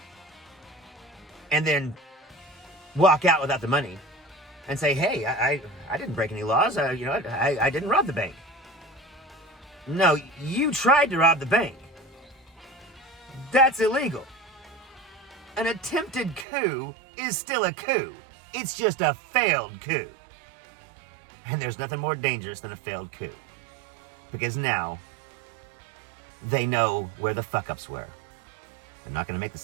and then walk out without the money and say, hey, I didn't break any laws. I didn't rob the bank. No, you tried to rob the bank. That's illegal. An attempted coup is still a coup. It's just a failed coup. And there's nothing more dangerous than a failed coup. Because now, they know where the fuck-ups were. They're not going to make the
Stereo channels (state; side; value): drops out; left; at 16.4 s